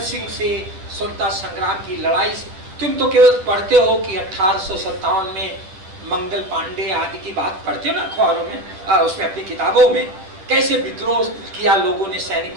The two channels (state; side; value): late; left; 11 ms